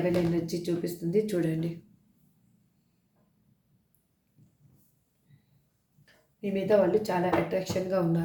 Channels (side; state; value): both; identical; correlation 1.00